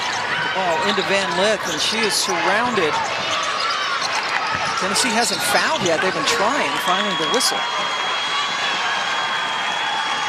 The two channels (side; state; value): both; identical; correlation 1.00